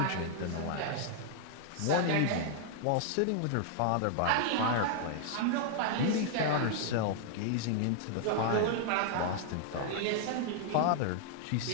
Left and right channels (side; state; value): both; different; correlation 0.00